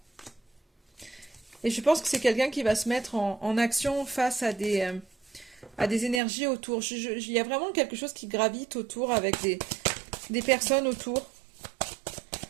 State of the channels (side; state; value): left; drops out; at 6.2 s